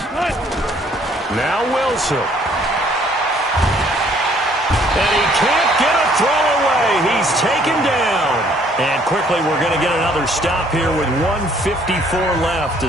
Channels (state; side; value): normal; both; correlation 0.62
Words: Now Wilson. And he can't get a throw away. He's taken down. And quickly we're going to get another stop here with 1:54 left